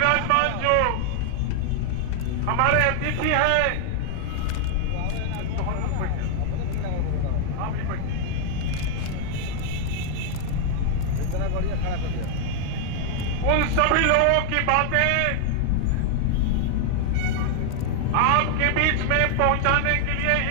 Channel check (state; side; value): different; both; correlation 0.00